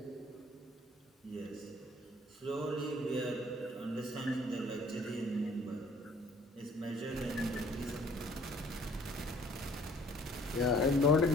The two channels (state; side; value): normal; both; correlation 0.57